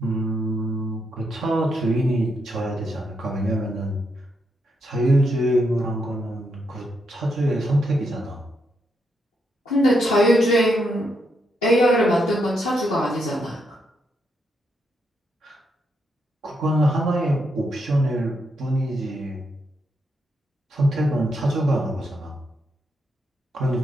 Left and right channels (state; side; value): normal; both; correlation 0.80